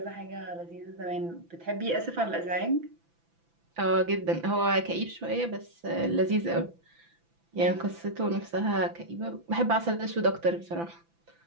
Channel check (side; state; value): left; late; 5.9 ms